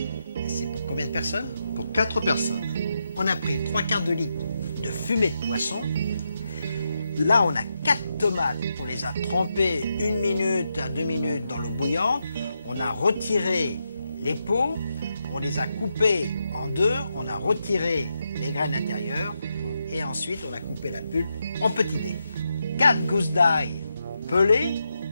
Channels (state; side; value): inverted; both; correlation -0.84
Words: c'est pour combien de personnes? Pour 4 personnes. On a pris 3/4 de litre de fumée de poisson. Là, on a 4 tomates. On les a trempées 1 minute à 2 minutes dans l'eau bouillante. On a retiré les peaux. On les a coupées en deux. On a retiré les graines intérieures. Et ensuite, on a coupé la pulpe en petits dés. 4 gousses d'ail pelées,